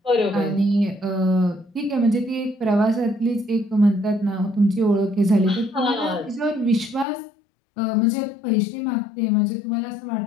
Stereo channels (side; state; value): right; drops out; at 7.1 s